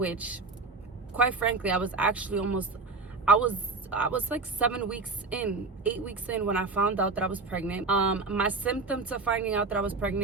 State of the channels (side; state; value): left; quieter; 3.9 dB